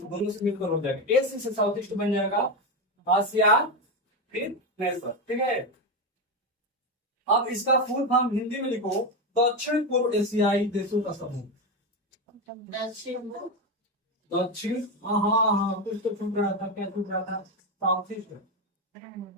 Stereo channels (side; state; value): both; normal; correlation 0.13